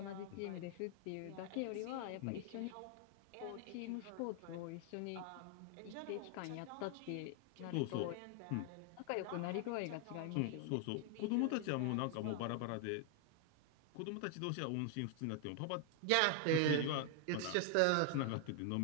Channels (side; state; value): both; different; correlation 0.00